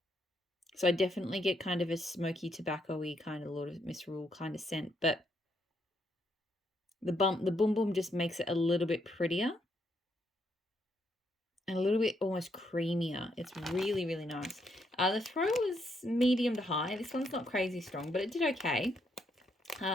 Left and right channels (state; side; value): normal; both; correlation 0.76